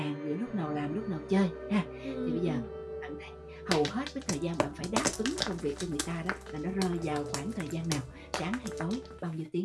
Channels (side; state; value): both; identical; correlation 1.00